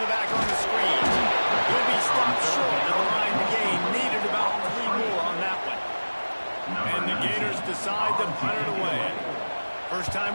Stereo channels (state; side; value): inverted; both; correlation -1.00